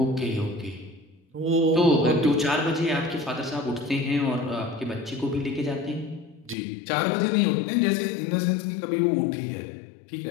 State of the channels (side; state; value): right; drops out; at 6.6 s